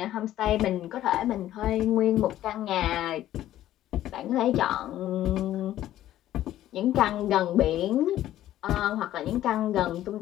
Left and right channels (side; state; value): right; quieter; 13.2 dB